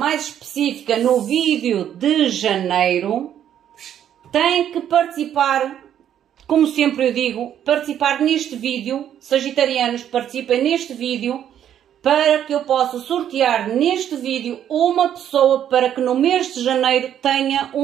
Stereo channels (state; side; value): quieter; left; 10.1 dB